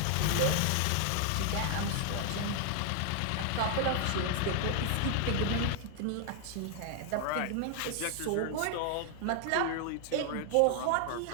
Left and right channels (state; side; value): different; both; correlation 0.00